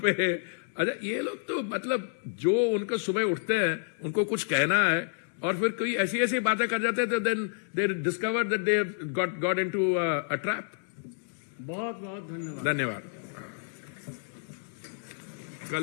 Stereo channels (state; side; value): silent; right; digital silence